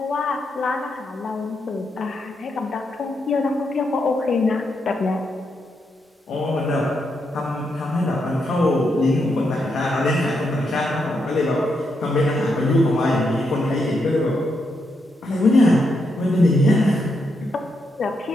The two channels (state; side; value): normal; both; correlation 0.81